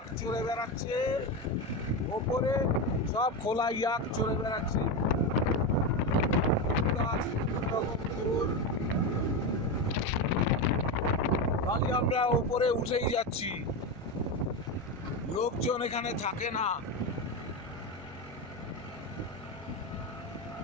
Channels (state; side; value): normal; both; correlation 0.15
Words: চড়ে বেড়াচ্ছে ওপরে, সব খোলা ইয়াক চড়ে বেড়াচ্ছে। খালি আমরা ওপরে উঠেই যাচ্ছি, লোকজন এখানে থাকে না।